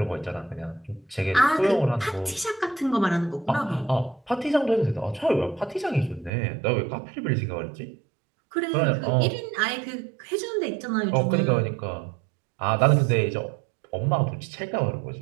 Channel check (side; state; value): left; drops out; at 6.3 s